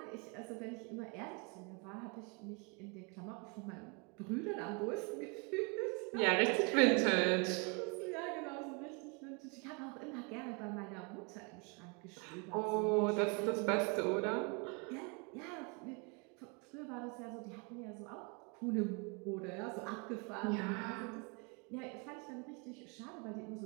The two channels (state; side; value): quieter; left; 32.5 dB